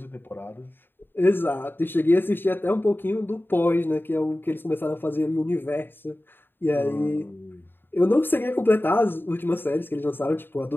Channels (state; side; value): late; right; 0.098 ms